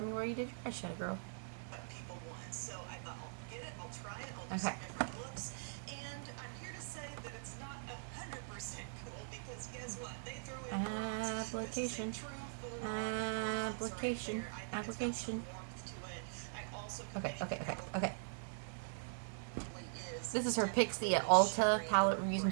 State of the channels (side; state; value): left; silent; 50 dB below the other